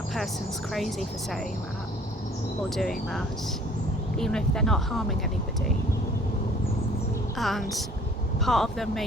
person's crazy for saying that or doing that, even if they're not harming anybody. And part of them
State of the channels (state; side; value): normal; both; correlation 0.54